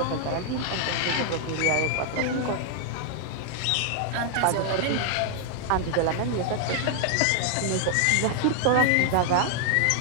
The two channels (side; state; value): both; different; correlation 0.00